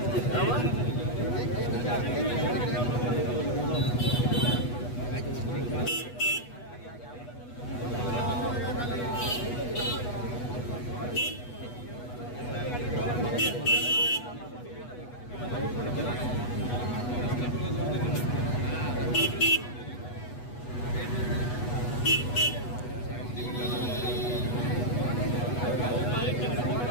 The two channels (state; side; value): late; right; 8.2 ms